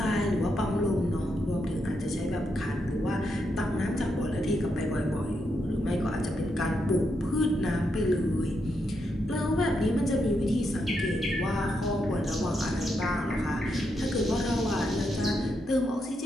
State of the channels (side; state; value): both; normal; correlation 0.82